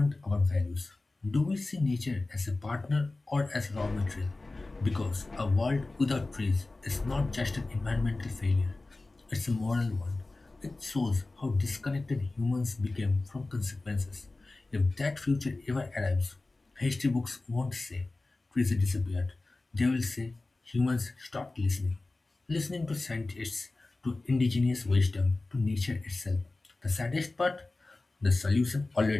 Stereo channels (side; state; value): right; quieter; 3.2 dB